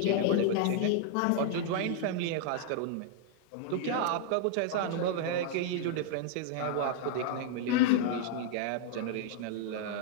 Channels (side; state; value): both; different; correlation -0.01